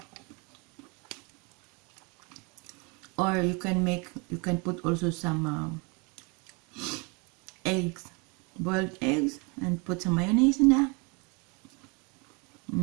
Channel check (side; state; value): left; quieter; 31.2 dB